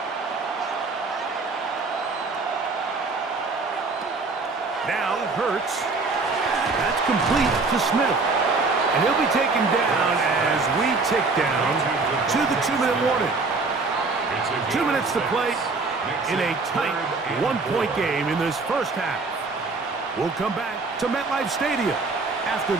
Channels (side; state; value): left; quieter; 3.9 dB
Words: Now Hurts. That's complete to Smith. And he'll be taken down as we tick down to the 2-minute warning. 2 minutes to play in a tight 1-point game in this 1st half. We'll come back to MetLife Stadium after